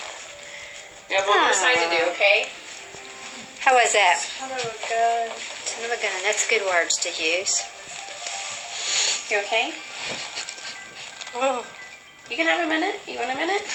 You have one more side to do, okay? How was that? Son of a gun. Son of a gun. That's good words to use. You okay? Oh, You can have a minute. You want a minute?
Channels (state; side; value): identical; both; correlation 1.00